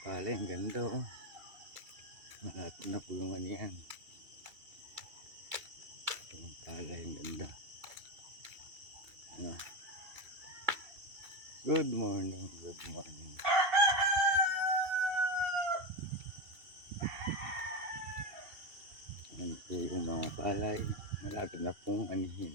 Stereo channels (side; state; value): left; late; 2.8 ms